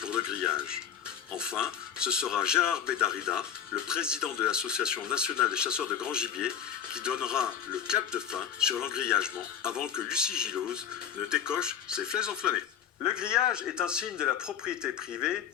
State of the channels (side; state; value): right; quieter; 8.7 dB